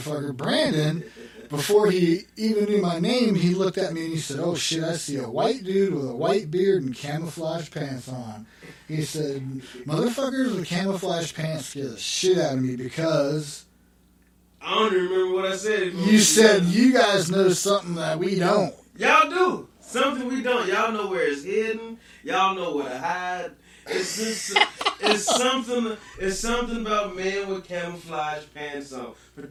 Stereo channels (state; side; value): identical; both; correlation 1.00